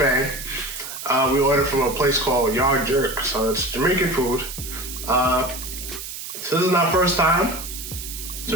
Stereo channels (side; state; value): right; noise; hiss, 9 dB below the sound